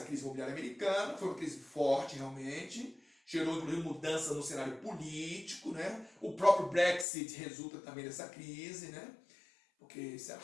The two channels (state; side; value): drops out; right; at 7.1 s